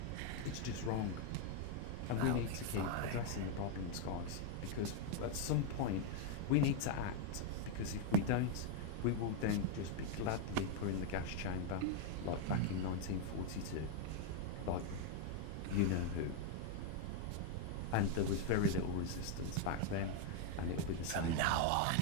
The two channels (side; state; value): both; different; correlation 0.01